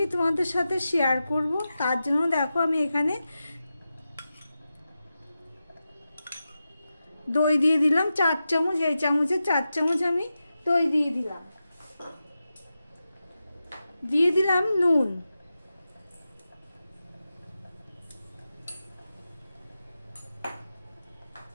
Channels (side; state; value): both; inverted; correlation -0.91